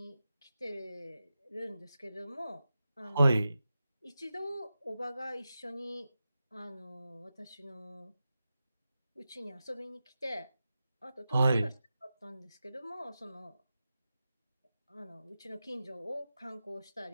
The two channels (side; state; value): both; inverted; correlation -0.92